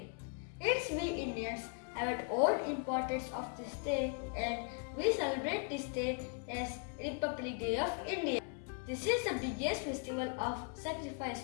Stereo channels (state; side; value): quieter; right; 38.3 dB